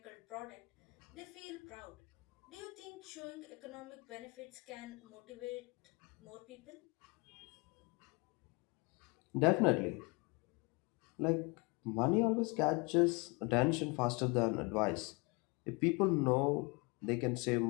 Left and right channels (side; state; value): right; quieter; 28.8 dB